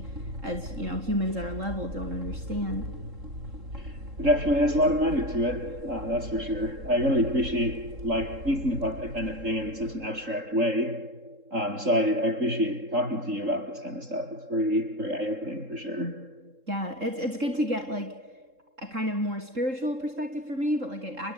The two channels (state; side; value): late; left; 3.7 ms